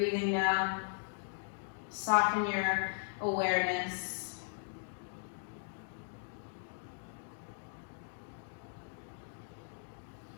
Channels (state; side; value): silent; right; digital silence